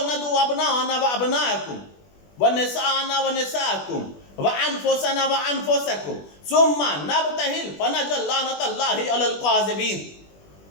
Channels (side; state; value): right; late; 21 ms